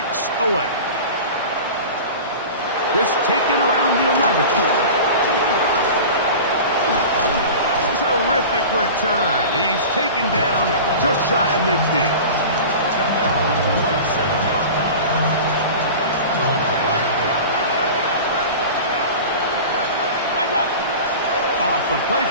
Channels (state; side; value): inverted; both; correlation -0.34